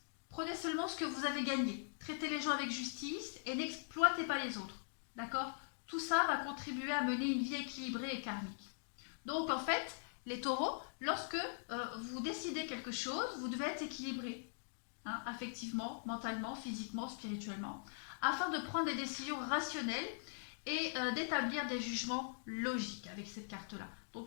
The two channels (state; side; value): silent; right; digital silence